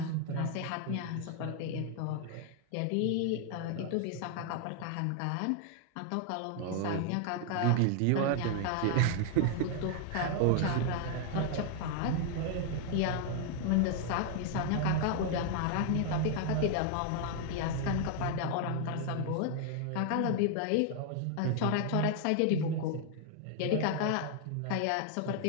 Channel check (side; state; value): both; different; correlation 0.00